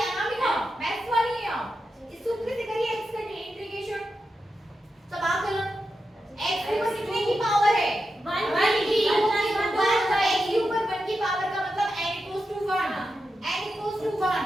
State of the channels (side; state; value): both; normal; correlation 0.89